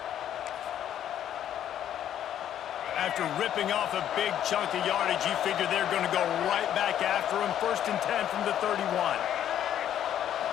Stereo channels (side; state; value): right; quieter; 10.6 dB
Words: After ripping off a big chunk of yardage, you figure they're going to go right back after him. 1st and 10 from the 31.